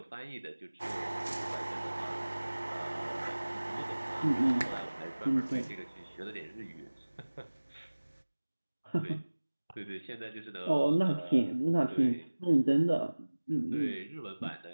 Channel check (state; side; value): inverted; both; correlation -1.00